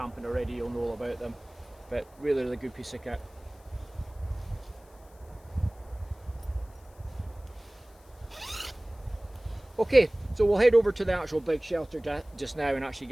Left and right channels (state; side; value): noise; left; hiss, 29 dB below the sound